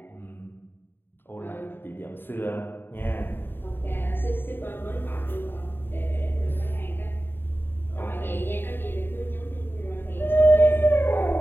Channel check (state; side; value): late; right; 0.099 ms